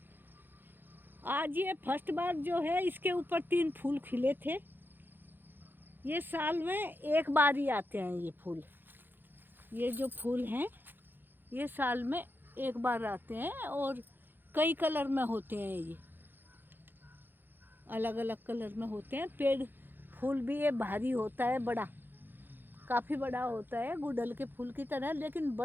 आज ये फर्स्ट बार जो है, इसके ऊपर 3 फूल खिले थे। ये साल में एक बार ही आते हैं ये फूल। ये जो फूल हैं ये साल में एक बार आते हैं, और कई कलर में होते हैं। ये अलग अलग कलर में होते हैं। पेड़ फूल भी ये भारी होता है, बड़ा, काफ़ी बड़ा होता है, गुड़हल के फूल की तरह, लेकिन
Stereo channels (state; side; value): late; left; 0.096 ms